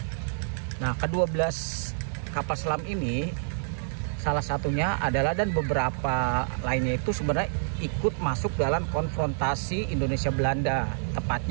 Nah, ke-12 kapal selam ini salah satunya adalah, dan beberapa lainnya itu sebenarnya ikut masuk dalam konfrontasi Indonesia-Belanda,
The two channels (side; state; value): left; silent; 59 dB below the other